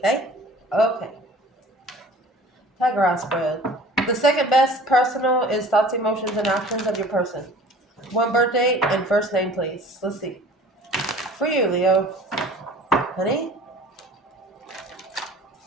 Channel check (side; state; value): both; normal; correlation 0.46